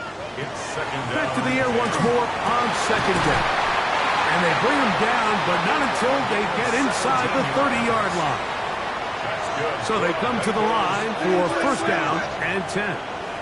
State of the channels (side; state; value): both; identical; correlation 1.00